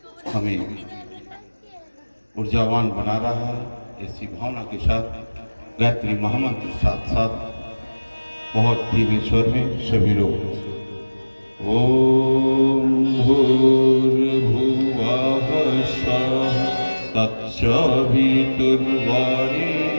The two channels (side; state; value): both; inverted; correlation -1.00